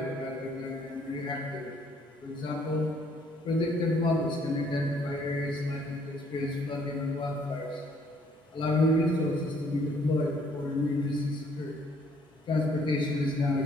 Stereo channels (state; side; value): normal; both; correlation 0.64